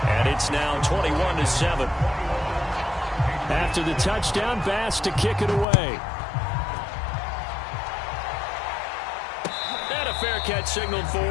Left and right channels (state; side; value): drops out; right; at 5.7 s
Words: And it's now 21-7. After the touchdown, Bass to kick it away. And a fair catch signaled for